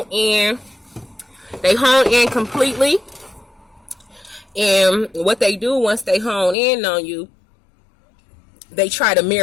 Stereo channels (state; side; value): drops out; right; at 6.6 s